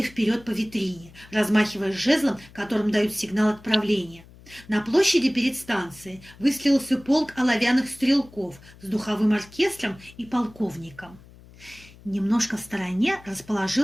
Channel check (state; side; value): noise; left; hum, 22 dB below the sound